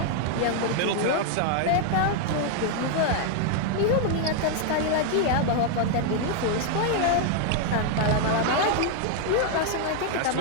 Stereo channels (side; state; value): both; different; correlation 0.00